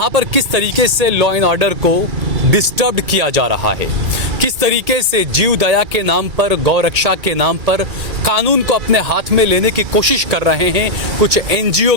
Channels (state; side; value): late; left; 2.3 ms